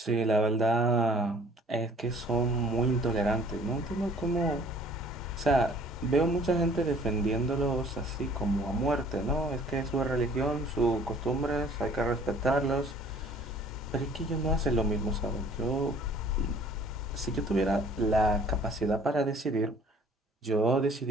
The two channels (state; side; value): normal; both; correlation 0.54